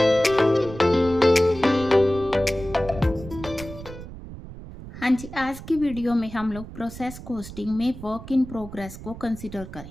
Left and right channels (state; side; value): noise; right; rumble, 13 dB below the sound